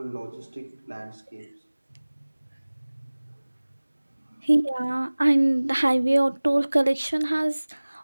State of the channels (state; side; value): inverted; both; correlation -1.00